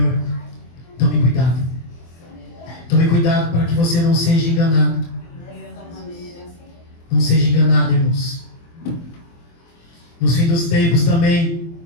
tome cuidado. Tome cuidado para que você não seja enganado. Não seja enganado, irmãos. Nos fins dos tempos também,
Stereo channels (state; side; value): late; right; 24 ms